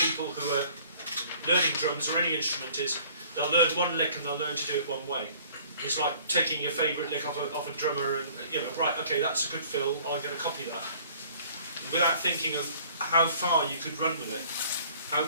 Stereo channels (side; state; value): both; inverted; correlation -0.54